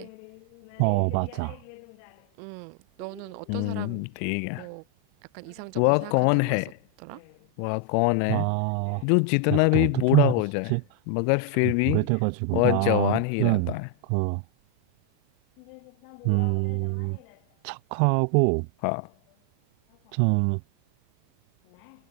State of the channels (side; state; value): both; different; correlation 0.01